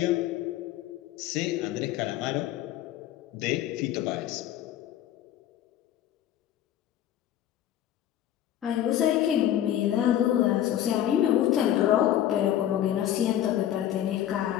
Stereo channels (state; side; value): quieter; right; 11.7 dB